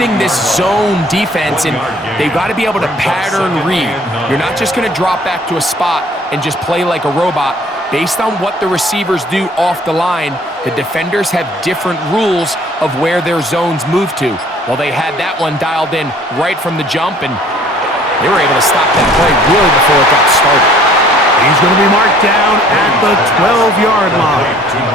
this zone defense, and they've got to be able to pattern read. You're not just going to drop back to a spot and just play like a robot. Based on what the receivers do off the line, the defenders have different rules of where their zones move to. Well, they had that one dialed in right from the jump, and they were able to stop that play really before it got started. He's going to be marked down at the 12-yard line.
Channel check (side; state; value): both; normal; correlation 0.55